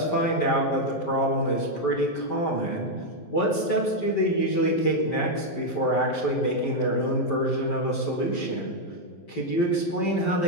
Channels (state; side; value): late; right; 12 ms